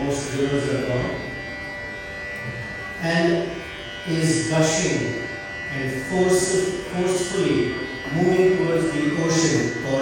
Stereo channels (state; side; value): identical; both; correlation 1.00